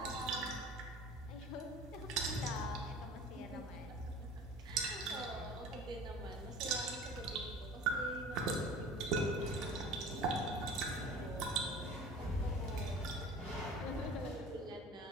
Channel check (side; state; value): both; normal; correlation 0.41